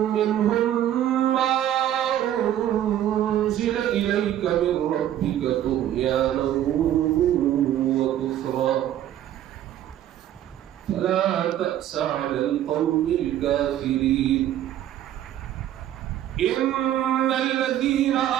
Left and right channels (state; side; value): quieter; left; 11.7 dB